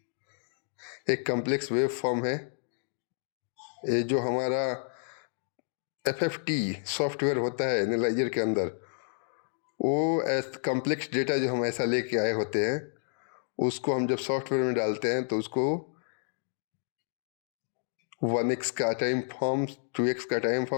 एक कॉम्प्लेक्स वेव फॉर्म है। ये जो हमारा FFT सॉफ्टवेयर होता है एनालाइजर के अंदर, वो कॉम्प्लेक्स डेटा जो हम ऐसा लेके आए होते हैं उसको हम जब सॉफ्टवेयर में डालते हैं तो उसको 1x का टाइम फॉर्म, 2x का टाइम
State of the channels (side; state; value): right; silent; digital silence